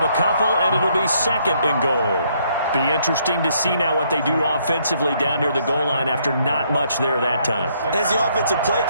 a couple, and it'll be 2nd and goal. Be interesting to see now what they do offensively down near the goal line after not much there that time. As the offensive play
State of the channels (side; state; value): both; inverted; correlation -0.70